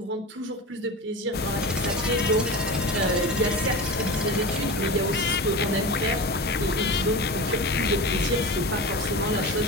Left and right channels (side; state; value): both; normal; correlation 0.28